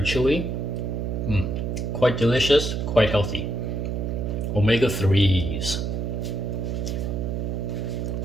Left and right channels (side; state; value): right; noise; hum, 2 dB below the sound